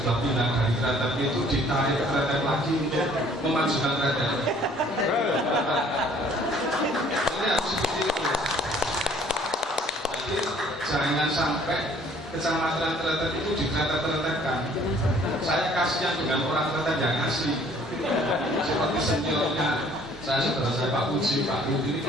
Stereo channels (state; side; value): normal; both; correlation 0.57